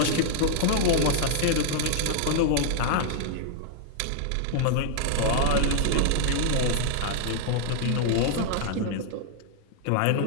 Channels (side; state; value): both; different; correlation 0.00